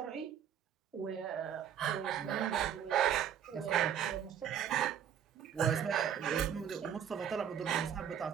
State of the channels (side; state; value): left; quieter; 9.1 dB